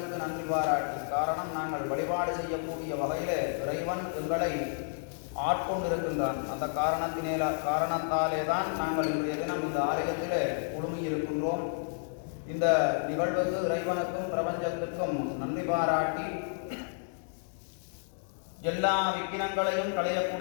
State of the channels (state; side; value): silent; right; digital silence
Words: நன்றி பாராட்டி, காரணம் நாங்கள் வழிபாடு செய்யக்கூடிய வகையில் இறைவன் எங்களை ஆட்கொண்டிருக்கின்றான். அந்த காரணத்தாலே தான் நாங்கள் இன்றைய தினம் இந்த ஆலயத்திலே குழுமியிருக்கின்றோம். இந்த நிகழ்வுக்கு இறைவனுக்கும் பிரபஞ்சத்திற்கும் நன்றி பாராட்டி, எல்லா விக்கினங்களையும்